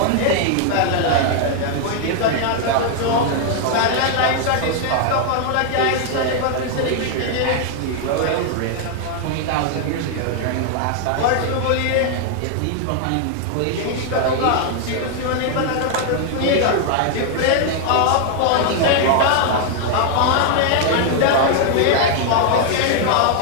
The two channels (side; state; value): both; different; correlation 0.00